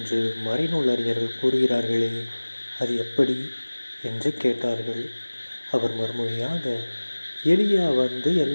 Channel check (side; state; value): both; inverted; correlation -1.00